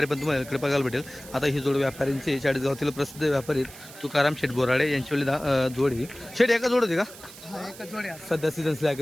पण तुम्हाला इकडे बघायला भेटेल. आता ही जोड व्यापाऱ्यांची चाळीसगावातील प्रसिद्ध व्यापारी तुकाराम शेठ बोराडे यांची वेळी जोडी. शेठ एका जोड होती का? सध्या सीझन स्लॅग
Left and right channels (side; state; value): right; noise; hiss, 17 dB below the sound